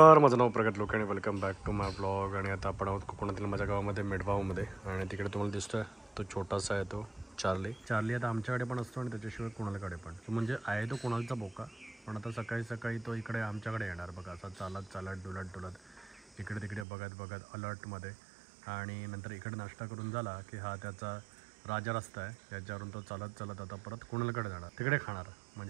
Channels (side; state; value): left; drops out; at 16.9 s